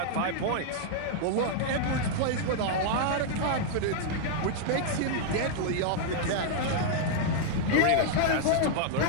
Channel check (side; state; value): both; different; correlation -0.01